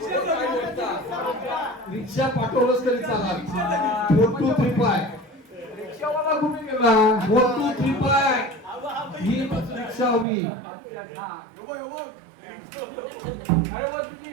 रिक्षा पाठवलंच तरी चालेल. 4 2 3 5 रिक्षावाला कुठे गेला? 4 2 3 5 ही रिक्षा हवी. अरे बा तुझी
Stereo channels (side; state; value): left; drops out; at 10.2 s